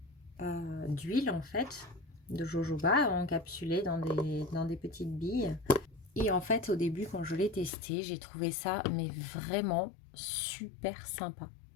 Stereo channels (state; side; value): drops out; right; at 7.7 s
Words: d'huile en fait, de jojoba encapsulées dans des petites billes. Et en fait, au début, quand je l'ai testé, j'ai trouvé ça mais vraiment super sympa.